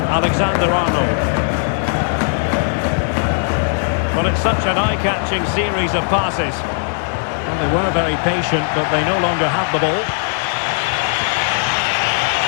Alexander-Arnold. Well, it's such an eye-catching series of passes. Well, they were very patient, but they no longer have the ball.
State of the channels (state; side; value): silent; right; 67 dB below the other